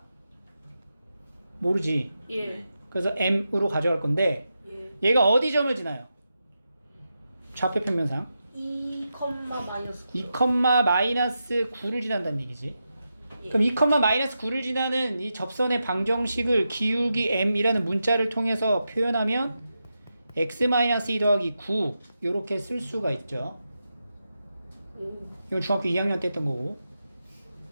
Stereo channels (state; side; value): inverted; both; correlation -0.88